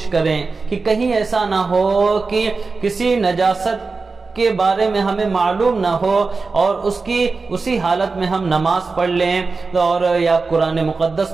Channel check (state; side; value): quieter; left; 4.2 dB